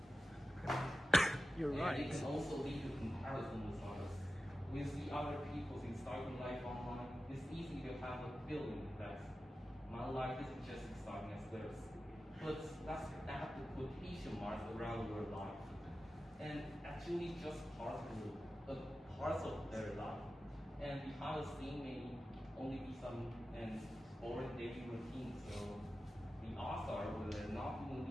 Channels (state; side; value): normal; both; correlation 0.94